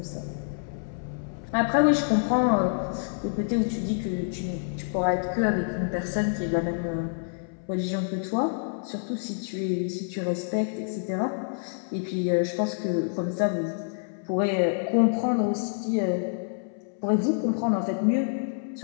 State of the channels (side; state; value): right; silent; 60 dB below the other